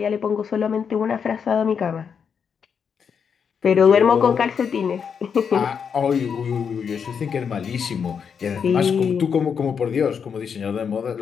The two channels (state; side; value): quieter; right; 6.8 dB